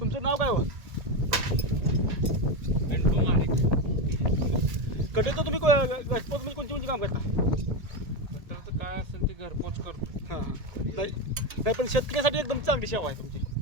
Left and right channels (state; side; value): late; left; 1.7 ms